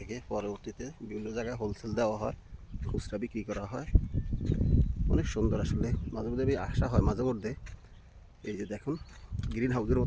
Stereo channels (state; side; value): identical; both; correlation 1.00